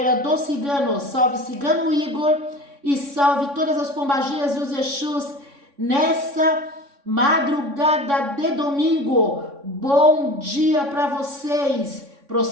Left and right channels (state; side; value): late; left; 3.6 ms